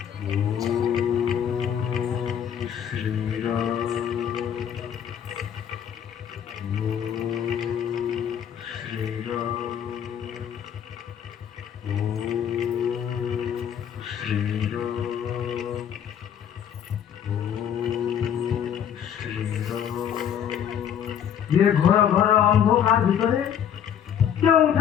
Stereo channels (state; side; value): quieter; right; 9.0 dB